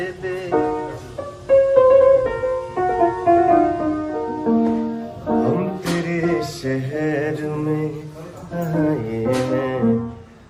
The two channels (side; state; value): both; identical; correlation 1.00